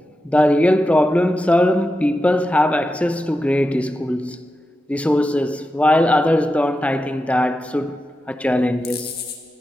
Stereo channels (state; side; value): normal; both; correlation 0.90